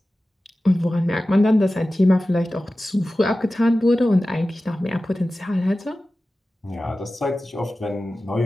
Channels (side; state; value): both; normal; correlation 0.95